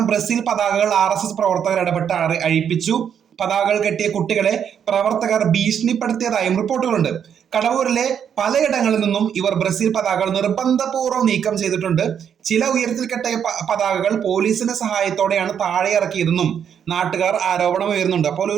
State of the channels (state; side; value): quieter; left; 8.3 dB